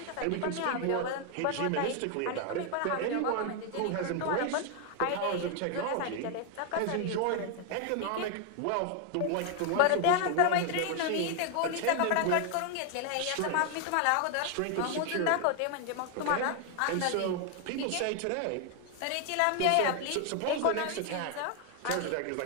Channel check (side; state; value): both; different; correlation 0.00